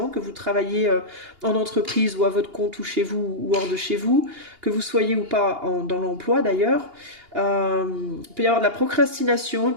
que vous travaillez en entreprise ou à votre compte ou chez vous ou hors de chez vous, que vous soyez ou pas dans l'emploi d'ailleurs, il peut y avoir de la procrastination, il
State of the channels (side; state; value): left; late; 2.8 ms